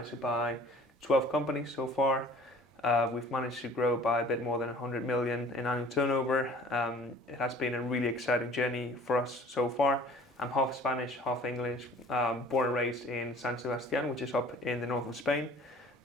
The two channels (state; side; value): normal; both; correlation 0.49